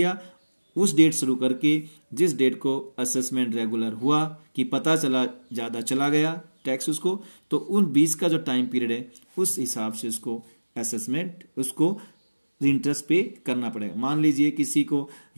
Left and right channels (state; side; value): inverted; both; correlation -1.00